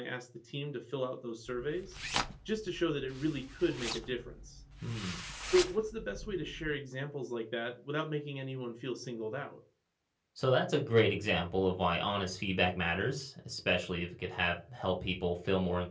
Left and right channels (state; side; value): identical; both; correlation 1.00